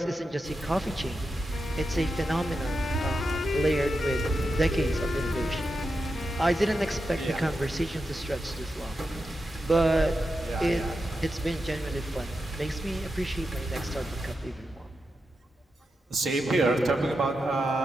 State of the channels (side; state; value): both; normal; correlation 0.89